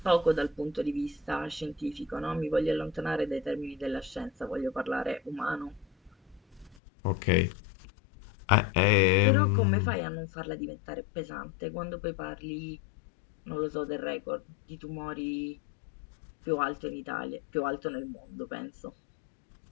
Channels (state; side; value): drops out; right; at 6.8 s